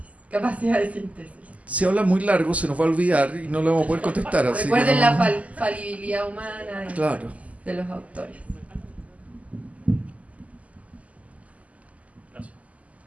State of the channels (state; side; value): late; left; 0.070 ms